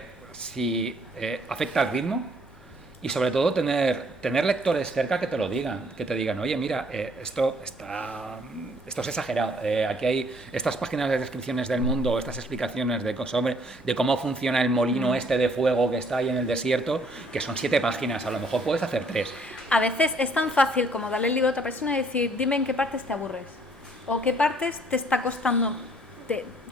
si afecta al ritmo. Y sobre todo tener lectores cerca que te lo digan, que te digan, oye, mira, esto es exagerado, aquí hay estas páginas de descripciones del mundo, estas explicaciones de cómo funciona el molino este de fuego que está ahí en el desierto, que son 7 páginas, a lo mejor puedes hacer 3. A veces es tan fácil como darle el libro a otra persona y decir, dime en qué partes te aburres, o qué partes te está costando, te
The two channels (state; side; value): normal; both; correlation 0.63